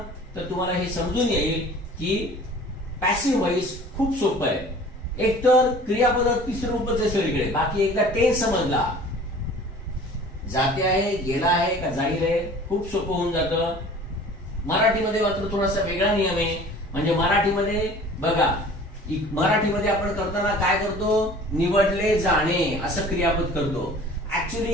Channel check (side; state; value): both; normal; correlation 0.46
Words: तर तुम्हाला हे समजून येईल की पॅसिव्ह वॉइस खूप सोपं आहे. एकतर क्रियापद तिसरं रूपच आहे सगळीकडे. बाकी एकदा टेन्स समजला, जाते आहे, गेला आहे का जाईल आहे, खूप सोपं होऊन जातं. मराठीमध्ये मात्र थोडासा वेगळा नियम आहे. म्हणजे मराठीमध्ये बघा, मराठीमध्ये आपण करताना काय करतो, निवडले जाणे असं क्रियापद करतो. ऍक्च्युली